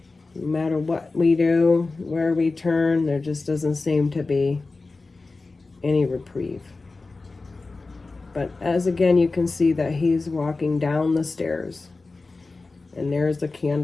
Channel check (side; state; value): right; quieter; 3.6 dB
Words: matter what we do, where we turn, there just doesn't seem to be any reprieve. But as again, you can see that he's walking down the stairs, and there's the